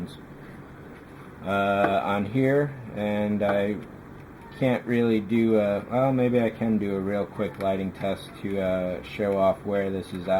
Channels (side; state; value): both; identical; correlation 1.00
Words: on here. And I can't really do well, maybe I can do a real quick lighting test to show off where this is